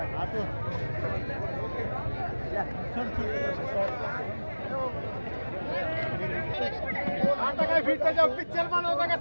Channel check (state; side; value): inverted; both; correlation -1.00